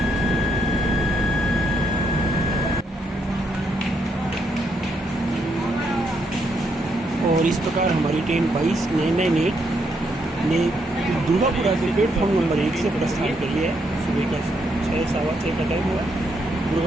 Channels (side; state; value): both; normal; correlation 0.76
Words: और इस प्रकार हमारी ट्रेन 22-998 ने दुर्गापुरा के प्लेटफॉर्म नंबर 1 से प्रस्थान कर लिया है। सुबह का 6-6:15 का टाइम हुआ।